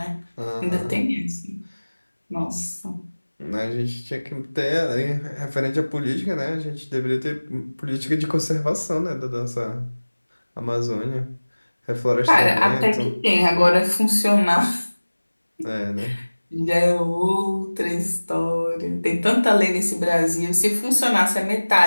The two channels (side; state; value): both; inverted; correlation -1.00